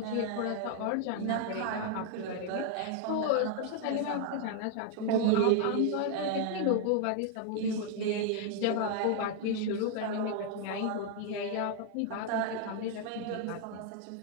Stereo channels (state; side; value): different; both; correlation 0.00